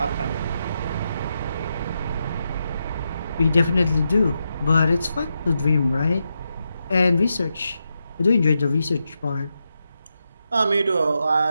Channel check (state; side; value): inverted; both; correlation -0.86